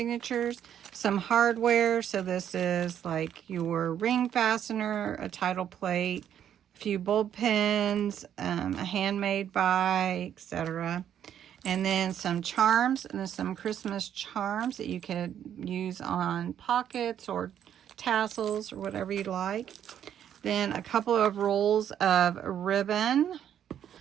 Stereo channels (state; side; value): quieter; left; 9.7 dB